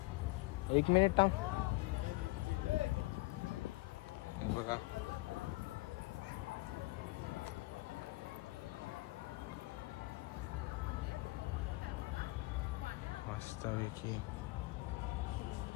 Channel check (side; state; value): right; quieter; 22.3 dB